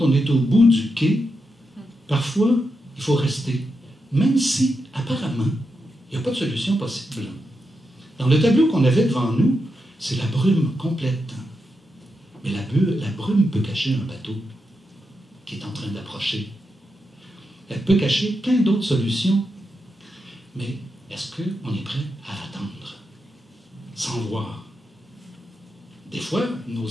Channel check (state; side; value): normal; both; correlation 0.86